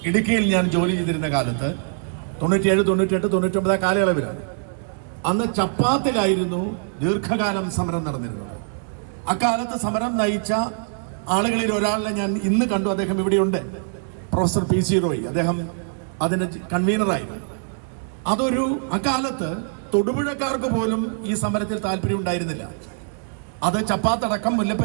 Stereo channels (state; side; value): silent; left; digital silence